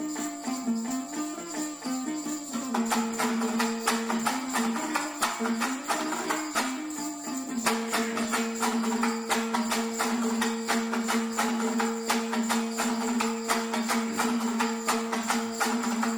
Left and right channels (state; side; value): identical; both; correlation 1.00